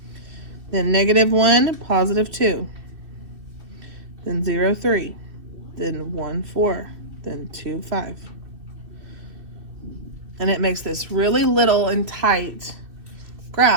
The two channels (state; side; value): late; left; 2.6 ms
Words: Then negative 1, positive 2. Then 0, 3. Then 1, 4. Then 2, 5. And it makes this really little and tight